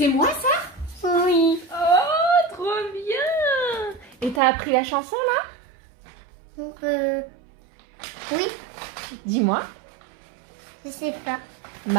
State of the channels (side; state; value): left; drops out; at 4.4 s